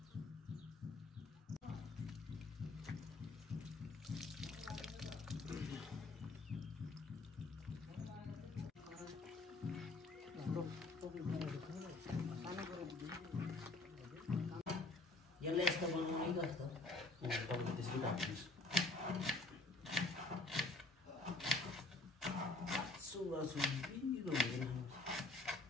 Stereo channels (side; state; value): right; quieter; 3.1 dB